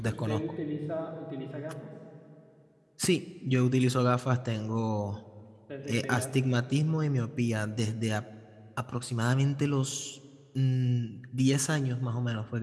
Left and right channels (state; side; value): identical; both; correlation 1.00